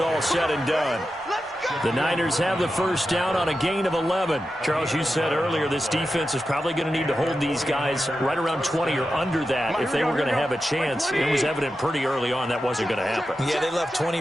said and done. The Niners have the first down on a gain of 11. Charles, you said earlier this defense is probably going to need to hold these guys right around 20 or under that if they were going to have a chance. It was evident pretty early on that wasn't going to happen. Yeah, they left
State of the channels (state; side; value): normal; both; correlation 0.91